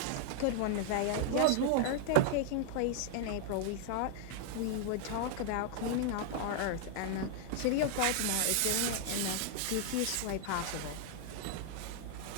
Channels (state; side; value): different; both; correlation 0.00